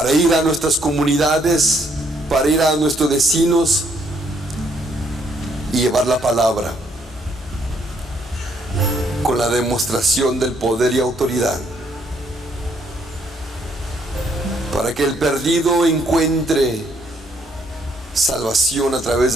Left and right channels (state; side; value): normal; both; correlation 0.69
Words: ir a nuestras comunidades, para ir a nuestros vecinos y llevar la palabra con la demostración del poder y autoridad, para que el perdido encuentre salvación a través